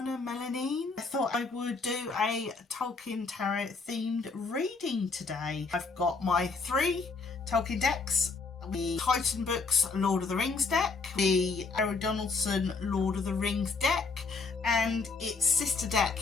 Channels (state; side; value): quieter; right; 4.3 dB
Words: Mellon Nin. I thought I would do a Tolkien Tarot themed reading today. I've got my 3 Tolkien decks, the Titan Books Lord of the Rings deck, the Donaldson Lord of the Rings deck, and its sister deck